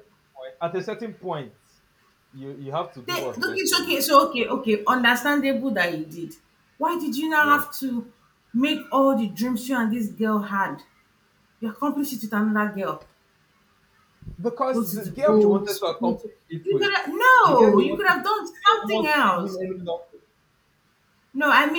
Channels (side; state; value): both; identical; correlation 1.00